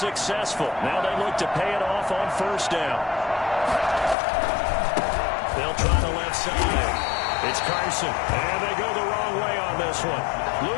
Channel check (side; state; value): right; drops out; at 4.2 s